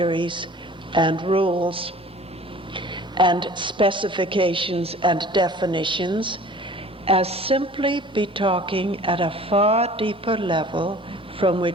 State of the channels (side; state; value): both; normal; correlation 0.46